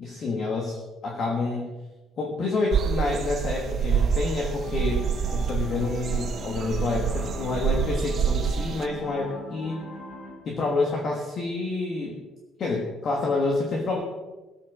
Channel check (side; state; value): both; normal; correlation 0.67